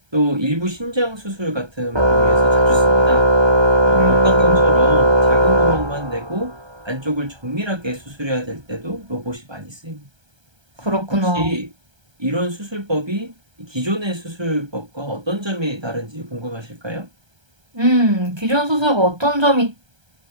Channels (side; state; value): left; late; 1.3 ms